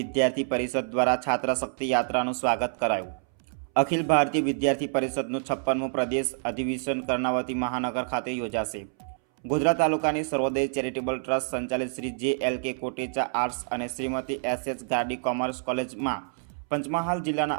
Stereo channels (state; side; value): silent; left; 60 dB below the other